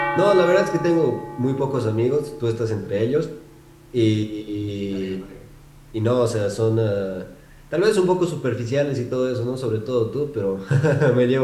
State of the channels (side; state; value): both; identical; correlation 1.00